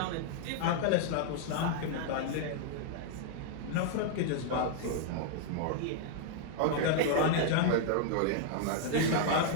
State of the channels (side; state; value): both; different; correlation -0.01